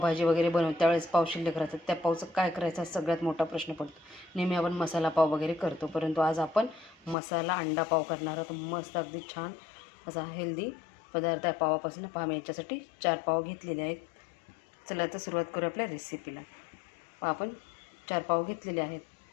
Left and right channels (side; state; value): right; drops out; at 7.2 s